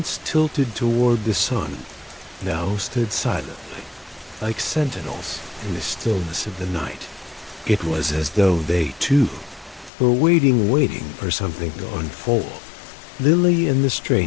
tilted toward the sun, now stood silently, like sentinels in the stillness of the night. It was as though they, too, were waiting for something to unfold. Lily and the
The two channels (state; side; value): drops out; right; at 9.9 s